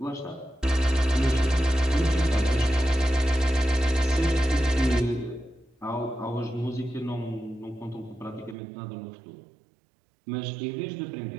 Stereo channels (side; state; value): left; drops out; at 8.6 s